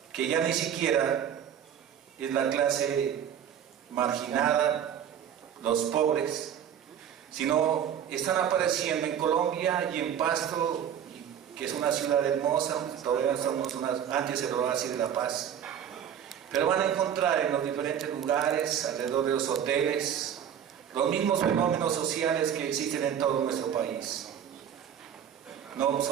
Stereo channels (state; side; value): quieter; left; 9.1 dB